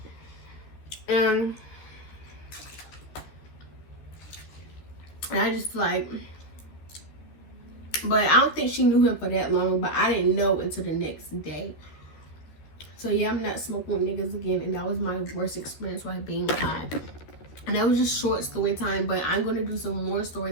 And I just like, but I don't think she knew him for that long, but I didn't know until the next day. So yeah, I'm not smoking with niggas again, and that was my worst experience while being high. And that was just short story time, but I'm gonna do some more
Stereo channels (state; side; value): late; right; 13 ms